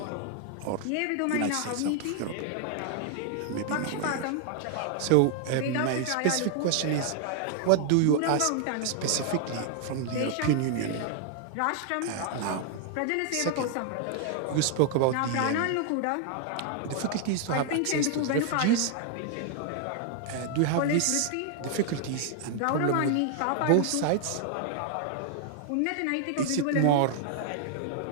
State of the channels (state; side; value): different; both; correlation 0.00